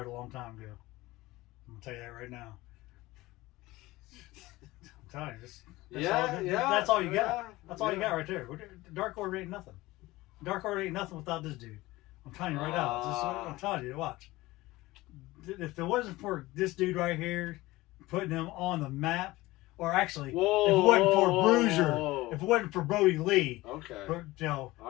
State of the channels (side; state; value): right; quieter; 19.1 dB